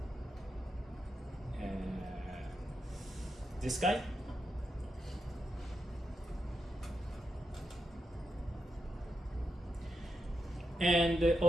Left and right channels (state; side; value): normal; both; correlation 0.86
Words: This guy. And